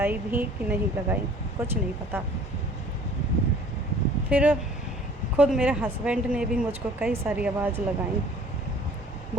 भी कि नहीं लगाई, कुछ नहीं पता। फिर खुद मेरे हस्बैंड ने भी मुझको कई सारी आवाज़ लगाई,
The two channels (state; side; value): normal; both; correlation 0.52